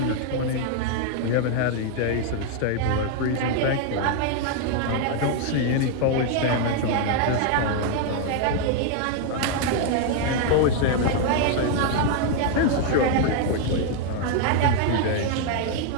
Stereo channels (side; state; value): both; different; correlation 0.00